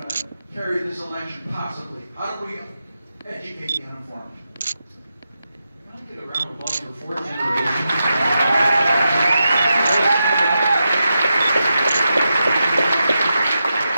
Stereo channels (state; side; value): inverted; both; correlation -0.88